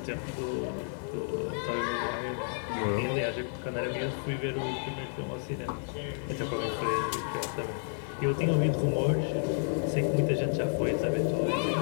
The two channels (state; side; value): silent; right; 57 dB below the other